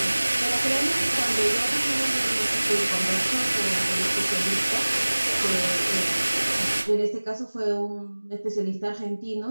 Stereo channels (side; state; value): both; inverted; correlation -1.00